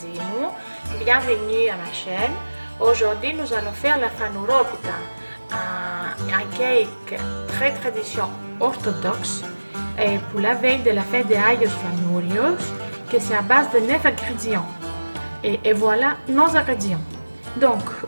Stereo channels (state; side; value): inverted; both; correlation -1.00